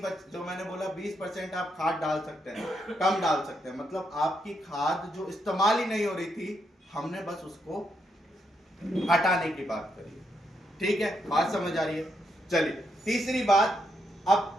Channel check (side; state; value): both; normal; correlation 0.79